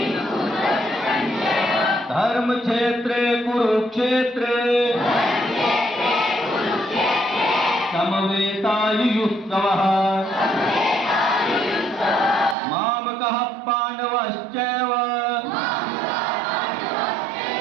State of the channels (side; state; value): left; drops out; at 12.6 s